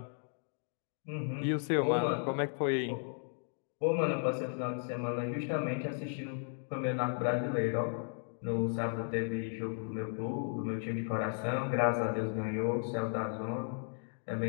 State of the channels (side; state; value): right; silent; 54 dB below the other